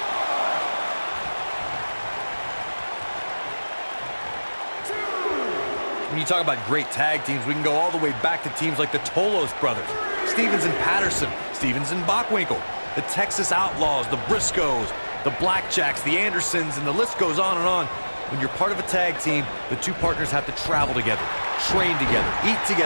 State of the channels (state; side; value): inverted; both; correlation -1.00